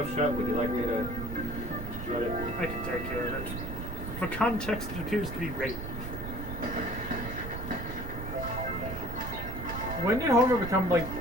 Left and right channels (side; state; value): right; noise; rumble, 7 dB below the sound